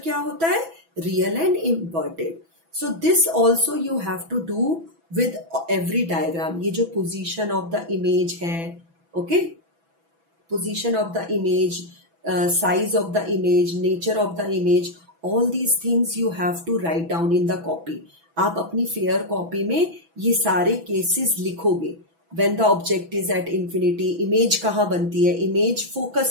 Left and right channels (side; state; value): left; late; 6.0 ms